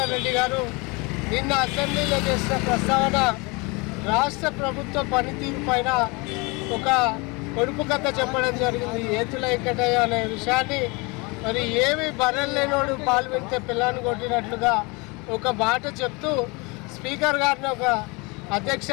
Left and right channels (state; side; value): quieter; right; 27.5 dB